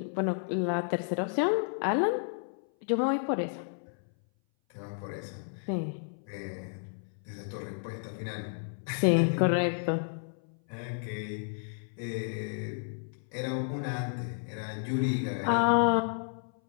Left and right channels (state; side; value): silent; right; 57 dB below the other